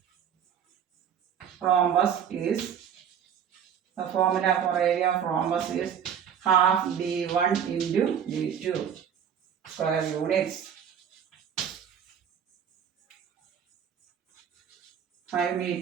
rhombus is, the formula for area of rhombus is half D1 into D2 square units. 5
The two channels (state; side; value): quieter; left; 8.4 dB